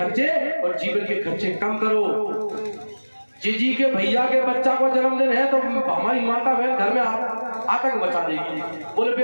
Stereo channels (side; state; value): both; inverted; correlation -1.00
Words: और जीवन के खर्चे कम करो। जीजी के भैया के बच्चा को जन्मदिन है तो हमारी माता बहन घर में आतंक मचा देगी। बोले भाई